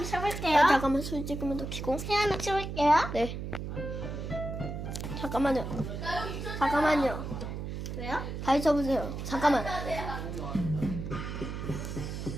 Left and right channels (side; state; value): right; noise; hum, 6 dB below the sound